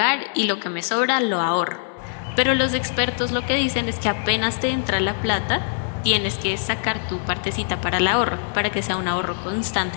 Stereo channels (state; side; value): silent; right; digital silence